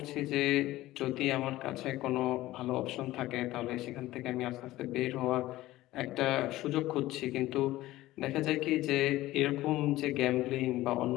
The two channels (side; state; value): right; quieter; 16.6 dB